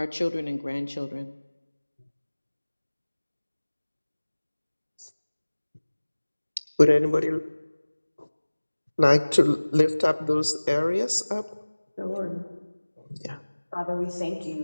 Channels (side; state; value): both; inverted; correlation -1.00